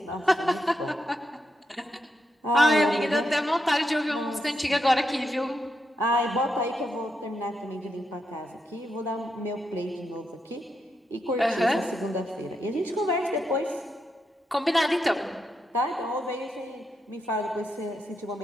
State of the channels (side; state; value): both; normal; correlation 0.83